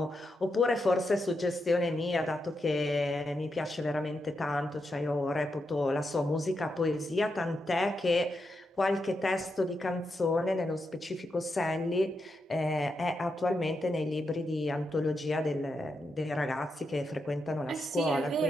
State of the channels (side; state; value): both; normal; correlation 0.85